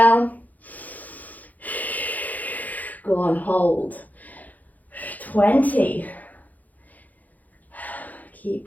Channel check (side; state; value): right; late; 0.080 ms